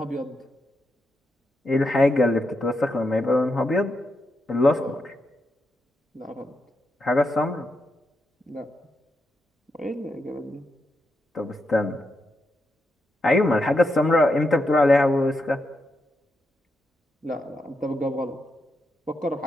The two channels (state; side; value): normal; both; correlation 0.84